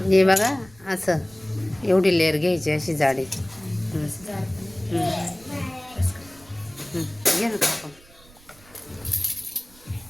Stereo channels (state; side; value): noise; right; rumble, 25 dB below the sound